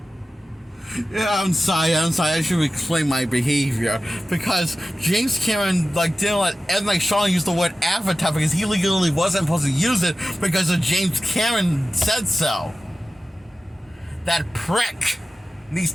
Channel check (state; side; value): normal; both; correlation 0.94